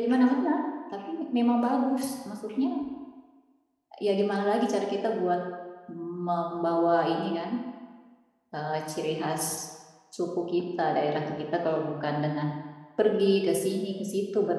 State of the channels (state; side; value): identical; both; correlation 1.00